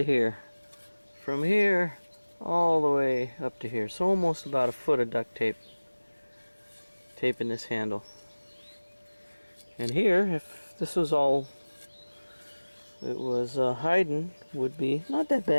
here. From here all the way up to here. So almost about a foot of duct tape taping this handle. And here, if this was all it was hiding, would be not that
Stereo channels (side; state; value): both; inverted; correlation -1.00